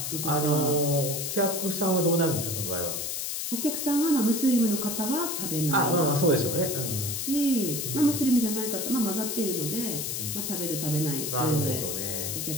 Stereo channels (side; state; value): left; noise; hiss, 3 dB below the sound